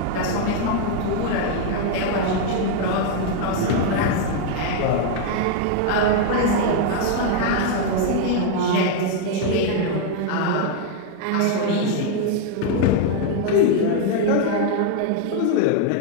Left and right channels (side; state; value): both; different; correlation 0.00